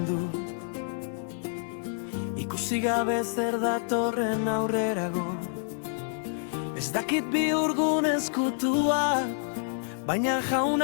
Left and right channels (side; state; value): right; silent; digital silence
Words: du, ikusi gabe zer datorren aurrerago. Ez dakit bihurgun ezkutua, baina